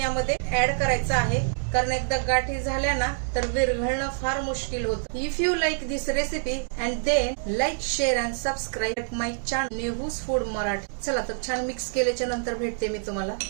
ऍड करायचं आहे, कारण एकदा गाठी झाल्या ना तर विरघळणं फार मुश्किल होतं। If you like this recipe and then like, share and subscribe my channel Nehu's food Marathi. चला तर छान मिक्स केल्याच्या नंतर भेटते मी तुम्हाला।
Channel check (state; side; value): silent; left; digital silence